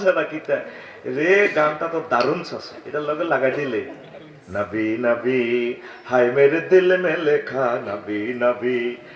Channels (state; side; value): identical; both; correlation 1.00